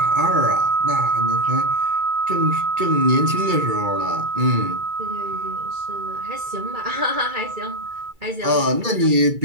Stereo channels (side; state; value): left; late; 2.3 ms